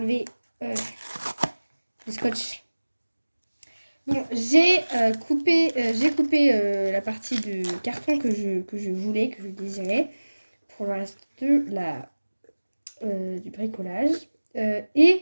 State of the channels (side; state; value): both; inverted; correlation -1.00